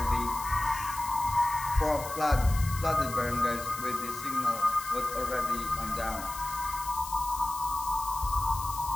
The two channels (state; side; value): noise; left; hiss, 11 dB below the sound